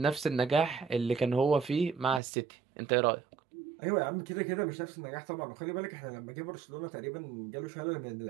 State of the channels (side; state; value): left; drops out; at 2.2 s